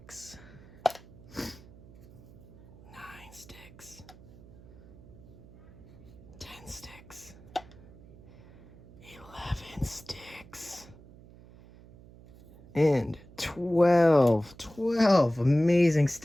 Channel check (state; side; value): noise; right; hum, 21 dB below the sound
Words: 9 sticks, 10 sticks, 11 sticks, and 12 amazing